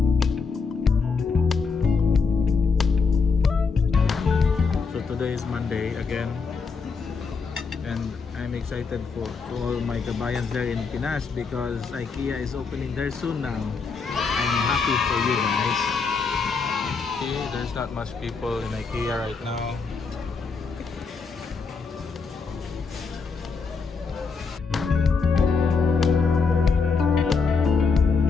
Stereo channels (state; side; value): quieter; right; 5.0 dB